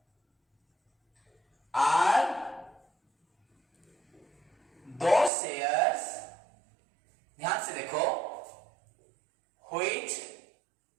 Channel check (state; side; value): drops out; left; at 5.3 s